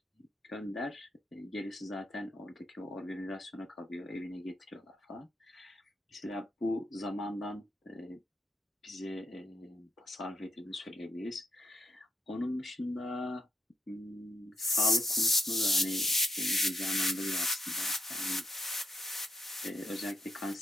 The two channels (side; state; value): both; normal; correlation 0.75